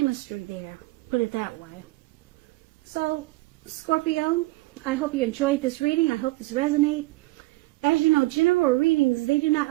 there, put it that way. So, Scorpio, I hope you enjoyed this reading. I hope this resonates. As you know, general readings, they do not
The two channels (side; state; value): left; quieter; 20.6 dB